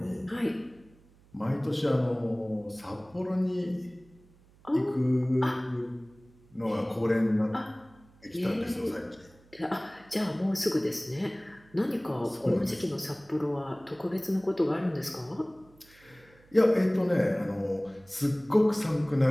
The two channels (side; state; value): right; noise; hum, 28 dB below the sound